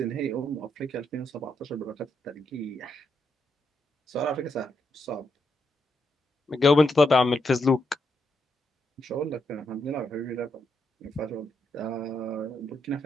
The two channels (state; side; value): normal; both; correlation 0.80